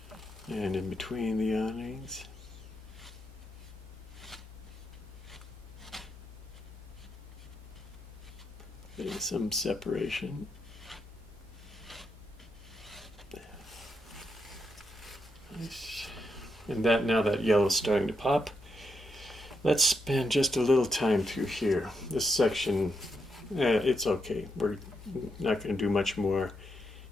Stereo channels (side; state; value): both; normal; correlation 0.81